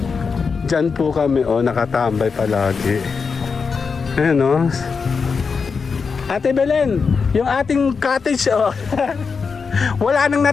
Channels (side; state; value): right; quieter; 5.3 dB